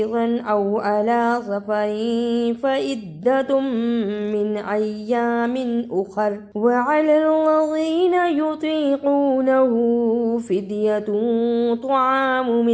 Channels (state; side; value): identical; both; correlation 1.00